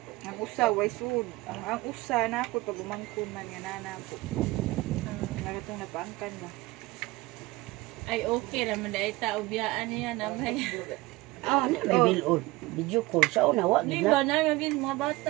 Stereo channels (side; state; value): left; quieter; 20.2 dB